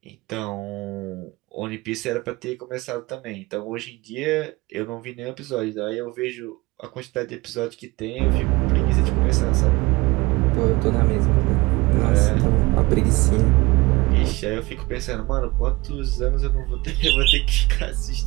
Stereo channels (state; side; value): quieter; left; 22.1 dB